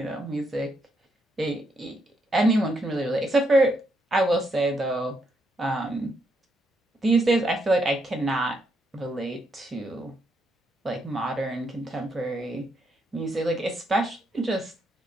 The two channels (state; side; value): normal; both; correlation 0.77